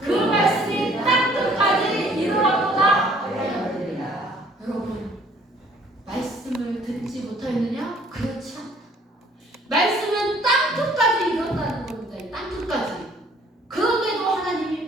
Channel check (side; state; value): both; normal; correlation 0.58